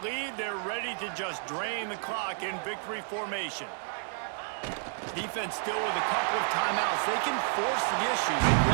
they're ready to just drain the clock in victory formation. Defense still with a couple of timeouts. They can force the issue, make the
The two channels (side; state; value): left; silent; 57 dB below the other